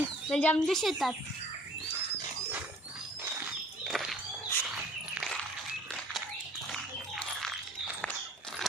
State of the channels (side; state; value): both; normal; correlation 0.52